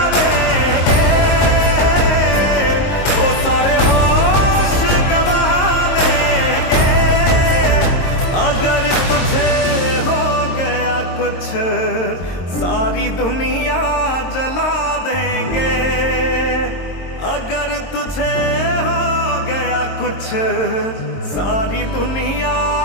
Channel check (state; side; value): late; right; 22 ms